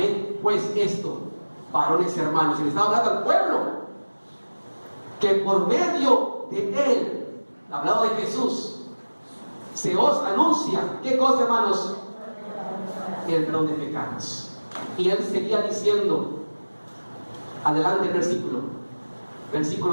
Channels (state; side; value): inverted; both; correlation -1.00